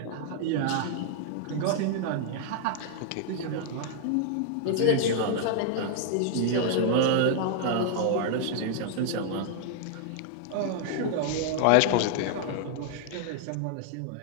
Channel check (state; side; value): different; both; correlation -0.01